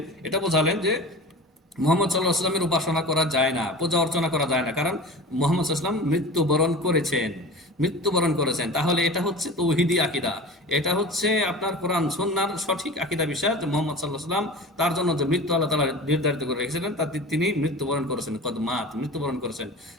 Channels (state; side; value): normal; both; correlation 0.34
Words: এটা বোঝালেন যে মুহাম্মদ সাল্লাল্লাহু আলাইহি ওয়াসাল্লামের উপাসনা করা যায় না, পূজা অর্চনা করা যায় না, কারণ মুহাম্মদ সাল্লাল্লাহু আলাইহি ওয়াসাল্লাম মৃত্যুবরণ করেছেন। তাহলে এটা হচ্ছে তৌহিদি আকীদা, এটা হচ্ছে আপনার কোরআন সুন্নাহর সঠিক আকীদা বিষয় যে মুহাম্মদ সাল্লাল্লাহু আলাইহি ওয়াসাল্লাম তার জন্য যে মৃত্যু আল্লাহ তাআলা নির্ধারিত করে রেখেছিলেন তাতে তিনি মৃত্যুবরণ করেছেন, কদ মাত, মৃত্যুবরণ করেছেন।